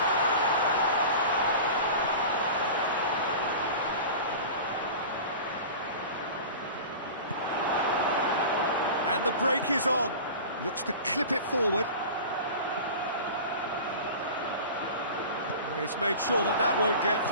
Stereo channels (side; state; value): both; inverted; correlation -0.35